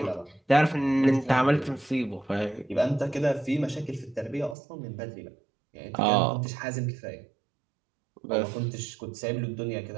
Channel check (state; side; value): drops out; left; at 4.5 s